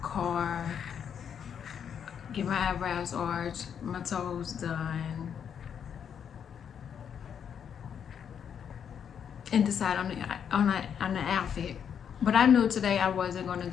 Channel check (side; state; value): right; quieter; 8.0 dB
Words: car, get my eyebrows arched, my toes done, and decide on the outfit. But I knew today I wasn't going to